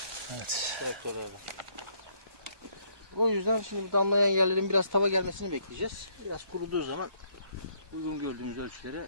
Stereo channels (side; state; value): left; late; 1.2 ms